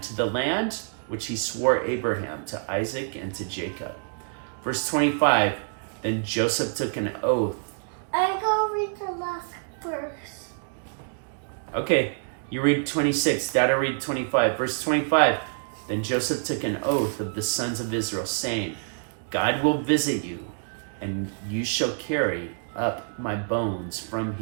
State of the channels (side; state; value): left; silent; digital silence